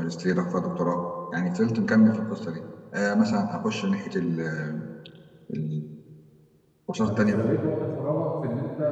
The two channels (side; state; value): both; identical; correlation 1.00